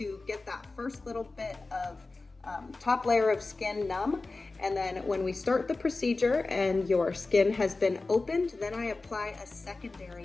get that first little bit of top layer of skin numb. And then when we start the procedure and your skin has been opened, then I apply a secondary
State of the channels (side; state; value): right; quieter; 3.5 dB